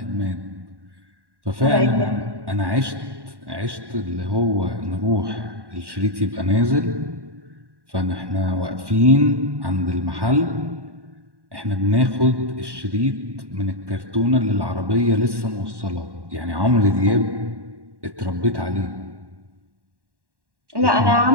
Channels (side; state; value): left; late; 1.1 ms